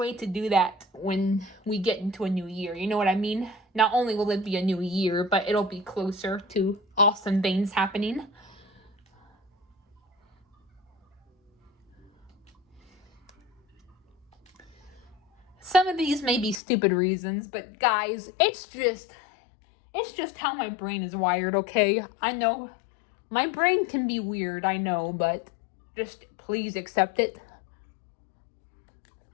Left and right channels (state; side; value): drops out; right; at 16.6 s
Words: to do that when we get into a new year? You know what I mean? Not only will it be a new year, but it'll be closer to awesome things happening. Some of these may be stupid reasons, but guys, it's just how my brain is wired, okay? I know my brain can be weird, I know, but just please accept it.